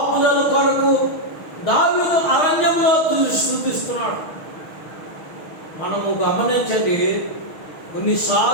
కొరకు దావీదు అరణ్యంలో స్తుతిస్తున్నాడు. మనము గమనించండి,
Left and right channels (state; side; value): late; right; 6.3 ms